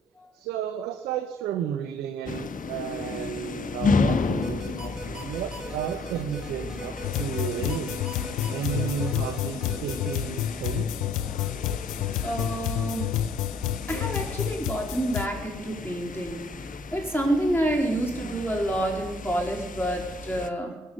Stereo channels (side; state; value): both; normal; correlation 0.59